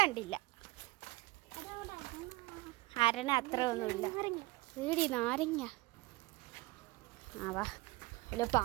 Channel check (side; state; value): left; quieter; 21.2 dB